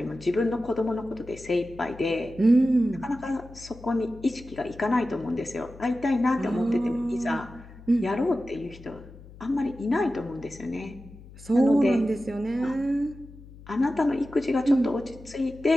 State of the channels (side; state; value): left; noise; hum, 19 dB below the sound